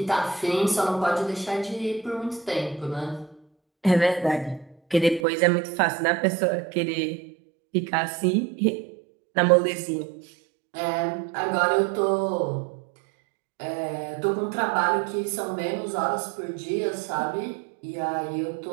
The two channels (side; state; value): left; drops out; at 5.2 s